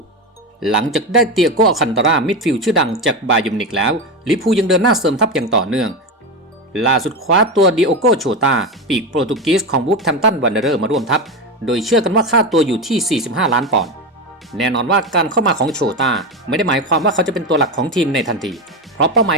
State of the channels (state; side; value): normal; both; correlation 0.16